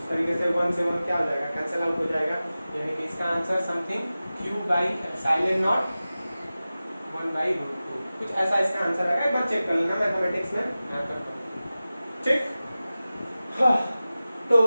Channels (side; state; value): both; inverted; correlation -0.96